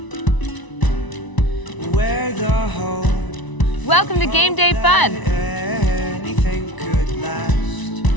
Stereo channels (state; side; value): late; right; 1.0 ms